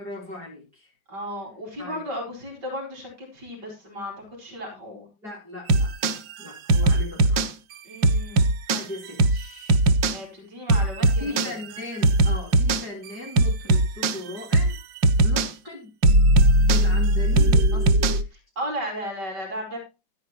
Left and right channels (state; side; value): late; left; 5.5 ms